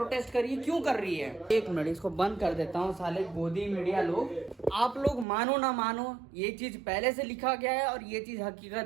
कर रही है, क्यों कर रही है? एक मिनट, इसको बंद कर देता हूँ। साले गोदी मीडिया लोग, आप लोग मानो ना मानो, ये चीज पहले से लिखा गया है और ये चीज हकीकत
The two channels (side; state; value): left; drops out; at 5.2 s